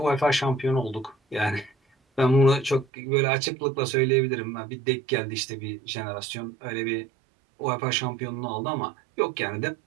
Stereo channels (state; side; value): drops out; left; at 2.9 s